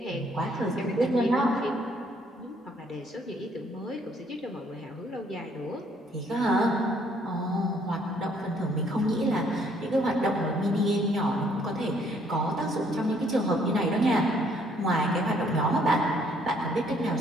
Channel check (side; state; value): both; normal; correlation 0.65